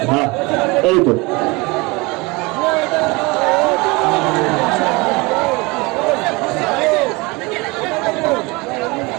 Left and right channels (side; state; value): left; quieter; 25.1 dB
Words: হ্যাঁ, এই তো